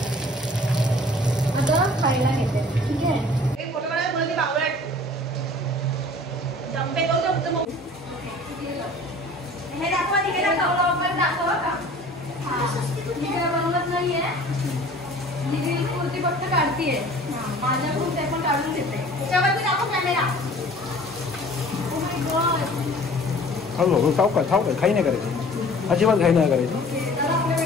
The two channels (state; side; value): normal; both; correlation 0.48